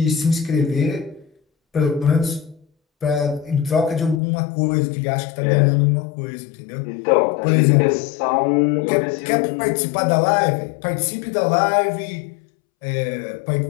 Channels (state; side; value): drops out; right; at 4.2 s